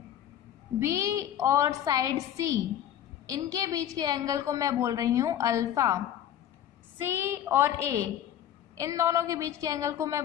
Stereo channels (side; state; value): right; quieter; 10.8 dB